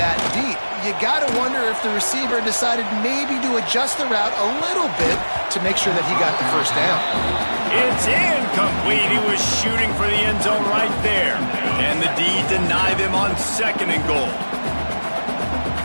deep. You got to wonder if the receiver decided maybe to adjust the route a little bit to make sure that he got the first down. It's incomplete. He was shooting for the end zone right there. And the D denied them on second and goal.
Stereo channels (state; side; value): inverted; both; correlation -1.00